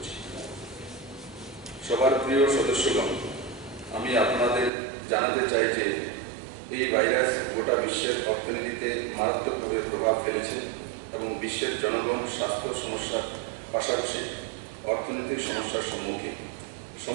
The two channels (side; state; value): left; drops out; at 4.7 s